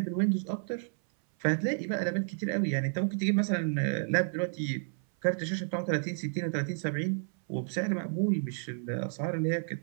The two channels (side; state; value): left; silent; 57 dB below the other